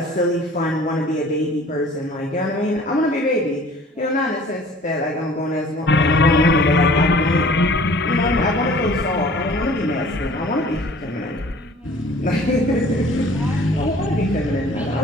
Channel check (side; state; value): both; normal; correlation 0.50